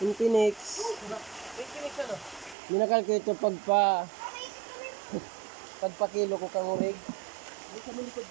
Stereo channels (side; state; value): left; drops out; at 2.6 s